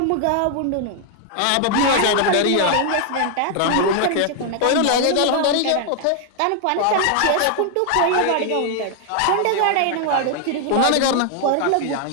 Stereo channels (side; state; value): both; different; correlation 0.00